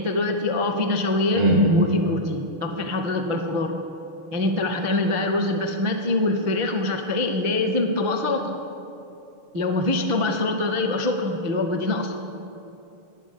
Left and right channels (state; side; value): late; left; 6.6 ms